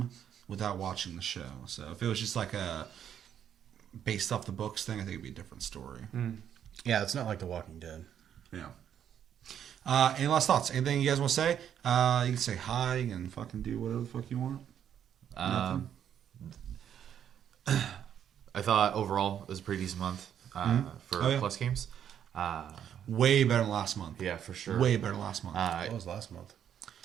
without watching the show. So if it was just like a based off the books thing, I think it'd be a different story. Yeah, it's not like The Walking Dead. Yeah. Any last thoughts? Anything you guys want to say? You can say hi and fucking do whatever the fuck you want. Nothing? I thought overall it was a pretty decent month for Plus games. Way better than last month. Yeah, for sure. Way better than last month. What was last month?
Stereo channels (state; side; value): quieter; left; 9.3 dB